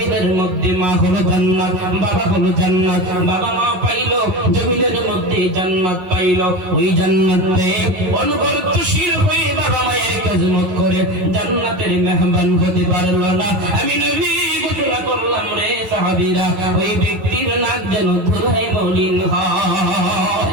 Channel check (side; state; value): left; late; 11 ms